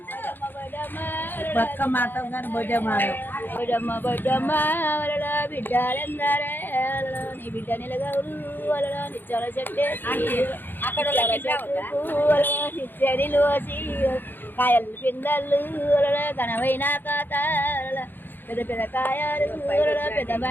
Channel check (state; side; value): late; right; 0.094 ms